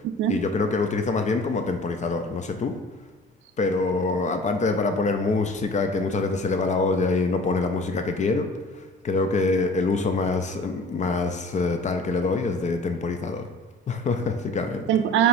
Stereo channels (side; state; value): both; normal; correlation 0.45